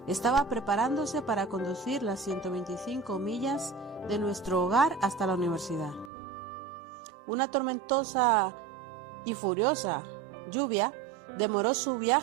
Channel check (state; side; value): drops out; left; at 6.1 s